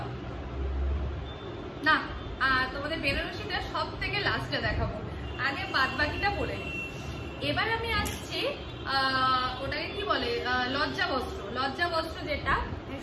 না, তোমাদের বেনারসিটা সব থেকে লাস্টে দেখাবো, আগে বাদ বাকিটা বলে নিই। এবার আমি আসছি ওটাকে কি বলে, লজ্জা বস্ত্র যেটা,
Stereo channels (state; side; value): identical; both; correlation 1.00